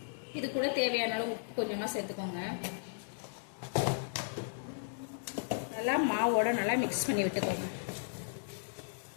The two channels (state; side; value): silent; right; digital silence